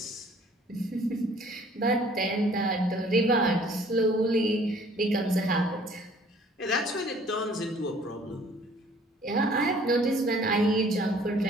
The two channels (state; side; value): normal; both; correlation 0.55